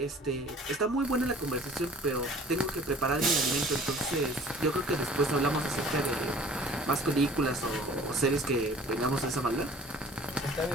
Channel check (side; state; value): both; normal; correlation 0.49